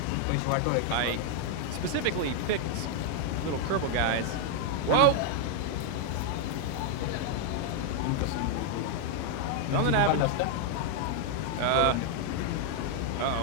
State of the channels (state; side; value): different; both; correlation 0.00